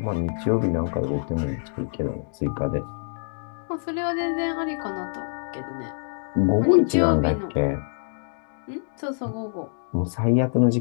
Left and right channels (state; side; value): silent; right; digital silence